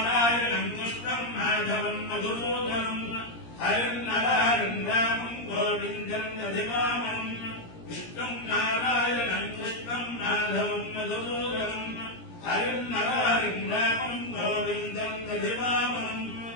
కృష్ణం మాధవం మధుసూదనం హరిన్నరాయం రామం గోవిందం దధివామనం. విష్ణుం నారాయణం కృష్ణం మాధవం మధుసూదనం హరిన్నరాయం రామం గోవిందం దధివామనం.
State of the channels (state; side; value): late; right; 17 ms